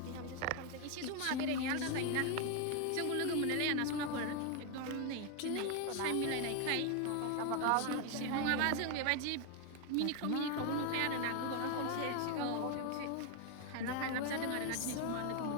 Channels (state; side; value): different; both; correlation 0.01